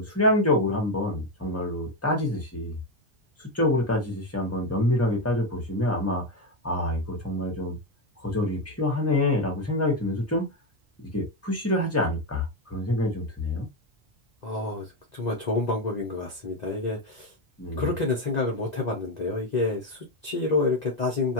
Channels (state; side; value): normal; both; correlation 0.10